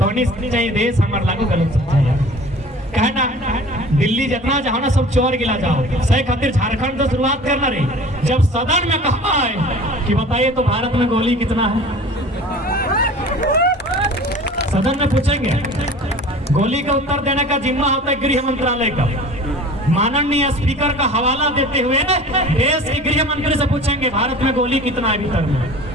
नहीं चाहिए देश हमारे लागू गलत सच्चा यार। कहना दिल्ली जितना जाओ ना सब चोर गिला जाओ, सही खातिर झारखंड तो शुरुआत करना रही। जब सदन में कहा है कि बताइए तो भारत में गोली कितना है, सदन में पूछेंगे, गोली का उत्तर देने का जिम्मा होता है गृह मंत्रालय का। माननीय स्पीकर का हवाला देते हुए देश के गृह मंत्री से पूछेंगे भारत में गोली कितना है भीतर में,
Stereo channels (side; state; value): both; normal; correlation 0.42